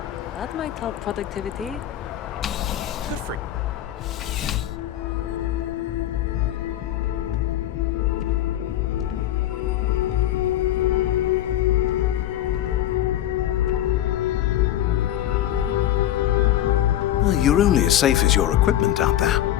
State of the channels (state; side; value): quieter; right; 12.4 dB